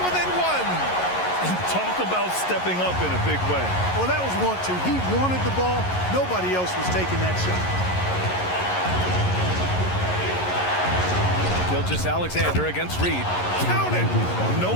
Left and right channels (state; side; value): late; right; 11 ms